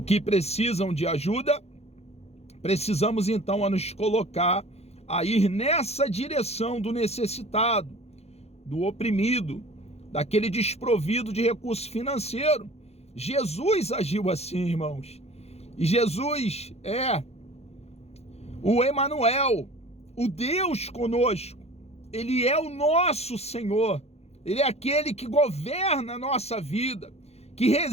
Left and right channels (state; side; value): late; right; 0.31 ms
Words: que precisam de ajuda, precisamos então a nos colocar a ir nessa direção do necessitado, do oprimido, daquele desprovido de recurso financeiro. Jesus agiu assim, irmãos. E Jesus é o Emanuel, o Deus conosco. Ele é o nosso Senhor. Ele é aquele que governa a nossa vida, que